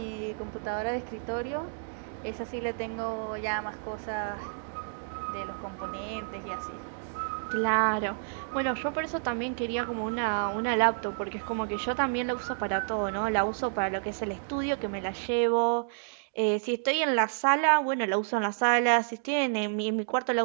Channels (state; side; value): silent; left; digital silence